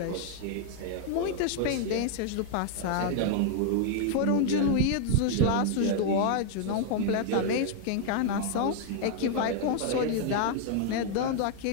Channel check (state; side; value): different; both; correlation 0.00